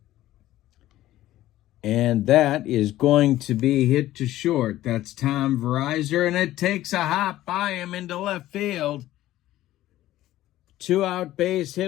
And that is going to be hit to short. That's Tom Verizor, and it takes a hop by him into left field. 2-out base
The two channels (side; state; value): right; quieter; 14.7 dB